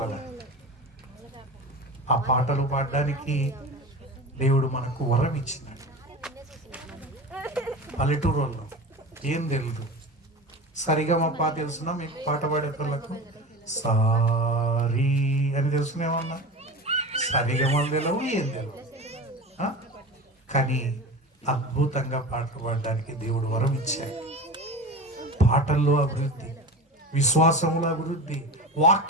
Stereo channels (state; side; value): normal; both; correlation 0.30